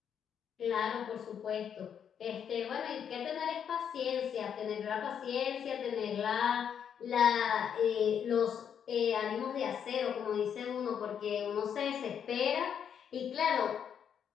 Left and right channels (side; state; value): right; quieter; 8.1 dB